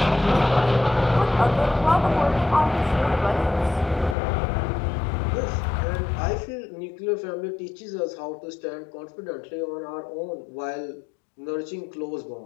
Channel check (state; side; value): drops out; right; at 4.2 s